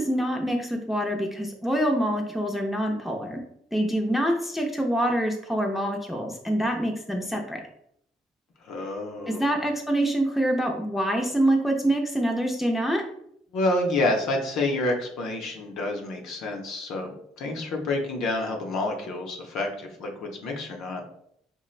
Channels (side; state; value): both; normal; correlation 0.75